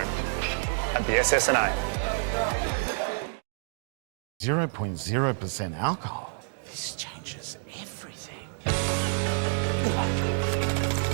at the SSNA. 0.0% alcohol. This changes everything.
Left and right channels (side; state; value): left; silent; digital silence